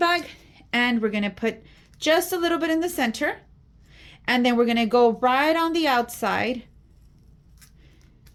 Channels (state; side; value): identical; both; correlation 1.00